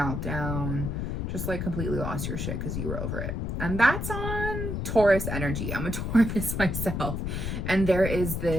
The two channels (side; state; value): left; noise; rumble, 2 dB below the sound